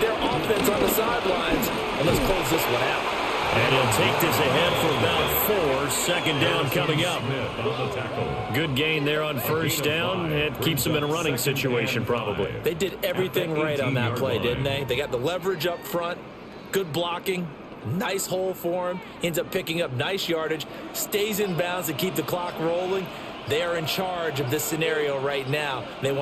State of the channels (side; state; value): both; identical; correlation 1.00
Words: offense on the sidelines, and let's close this one out. And he'll take this ahead for about 4. 2nd down coming up. Good gain there on 1st down. It keeps them in a running situation probably. They did everything right on that play, didn't they? They got the leverage up front, good blocking, nice hole for him, ends up picking up nice yardage, stays in bounds to keep the clock rolling. They are in charge of this scenario right now. They